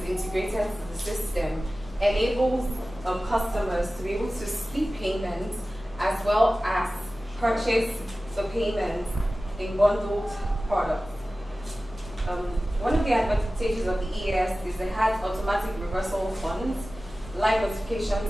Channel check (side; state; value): both; normal; correlation 0.96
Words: integrated to the system enables customers to be able to split payments as well as purchase the payments in bundled products. One of the advantages of the EAS is it has automatic reversal of funds, live notification